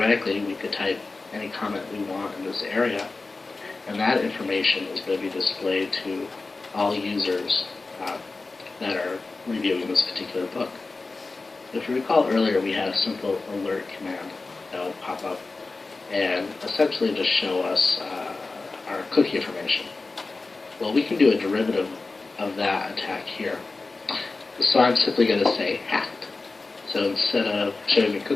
we could type any comment we want in this area, and that information is going to be displayed to all users that are reviewing this particular book. If you recall earlier, we had a simple alert command that would pop up and essentially just show us our cookie information. Well, we can do a derivative of that attack here. So I'm simply going to say hacked. So instead of showing me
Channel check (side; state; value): right; quieter; 3.7 dB